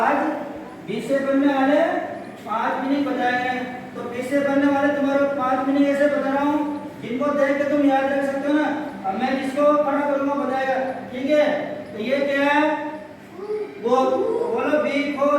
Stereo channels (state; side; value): identical; both; correlation 1.00